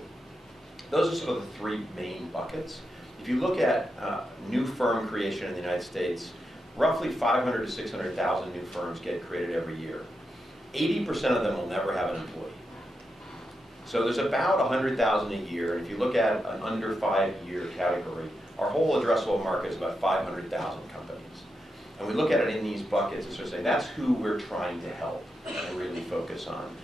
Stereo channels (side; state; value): both; normal; correlation 0.86